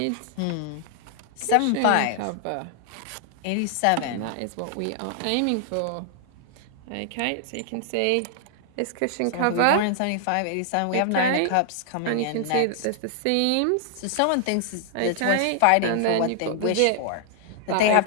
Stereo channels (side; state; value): both; different; correlation 0.00